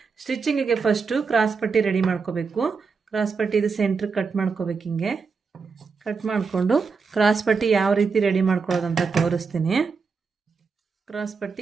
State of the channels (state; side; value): quieter; left; 5.1 dB